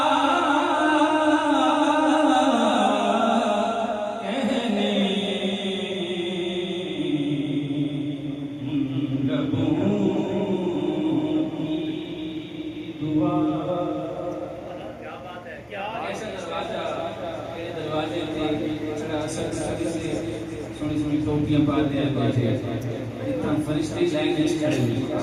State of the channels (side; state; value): both; identical; correlation 1.00